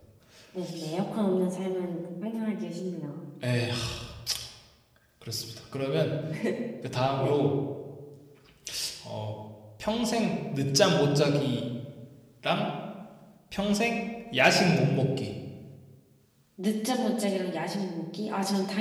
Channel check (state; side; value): identical; both; correlation 1.00